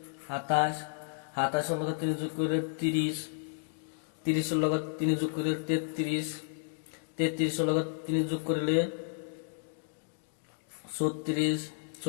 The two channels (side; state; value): right; silent; digital silence